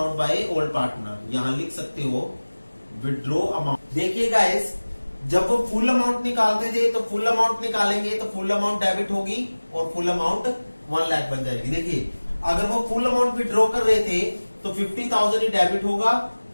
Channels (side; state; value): both; inverted; correlation -1.00